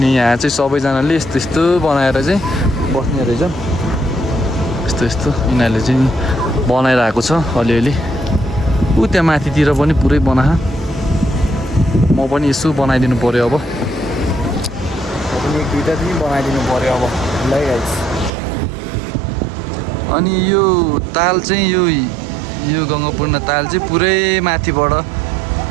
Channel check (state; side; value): drops out; left; at 18.3 s